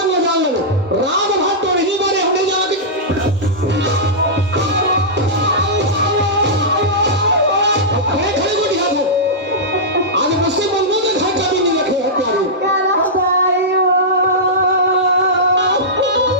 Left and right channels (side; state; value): both; normal; correlation -0.12